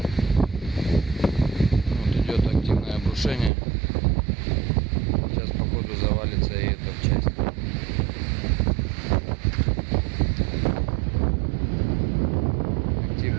Вот идет активное обрушение. Сейчас походу завалится и эта часть.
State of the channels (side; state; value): left; drops out; at 3.5 s